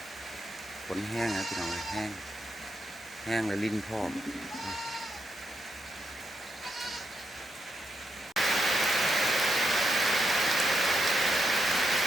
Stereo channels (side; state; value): both; normal; correlation 0.82